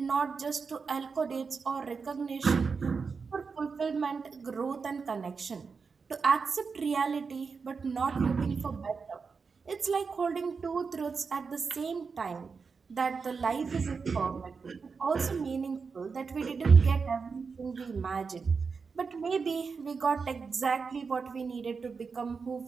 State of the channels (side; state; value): left; quieter; 5.1 dB